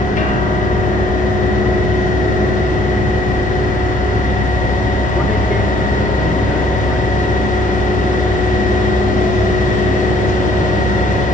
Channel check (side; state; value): both; normal; correlation 0.61